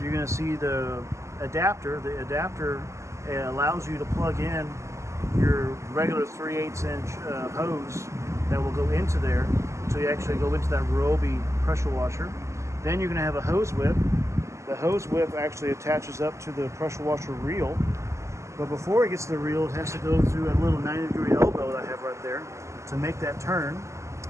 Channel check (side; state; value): left; late; 0.14 ms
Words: going to see the adapter. The adapter allows you to plug in your regular 3/8 inch hose that will go into there, so you actually go into that Ryobi pressure washer. Then you're going to have a hose whip. The hose whip actually attaches up to the pressure washer reel, but before it gets to the reel, it has to go through a little 90-degree elbow that I have right there to make that turn.